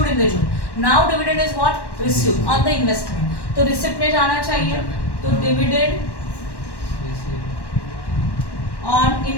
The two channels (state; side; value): late; right; 1.1 ms